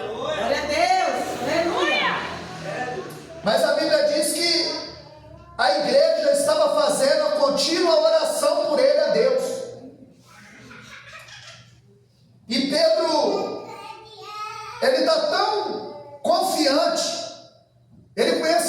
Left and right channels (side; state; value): both; identical; correlation 1.00